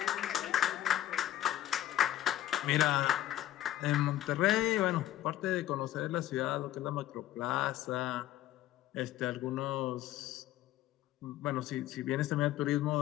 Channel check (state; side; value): quieter; right; 13.4 dB